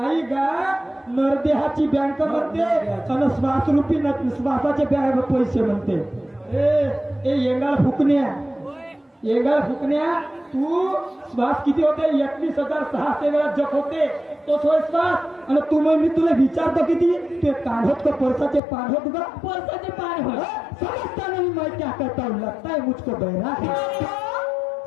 गा. नरदेहाची बँक म्हणते आणि श्वासरूपी श्वासाचे पैसे म्हणते. ए येंगाळ फुकण्या तू श्वास किती होते? 21,600 वेळा जप होते. तो विश्वास आणि तू मग मी तुला विचारतो किती ते काढत को परसाचे पान होत गा परसाचे पान हो समजता नहीं मैं क्या करता हूँ लगता है मुझको बहरा है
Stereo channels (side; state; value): right; drops out; at 18.6 s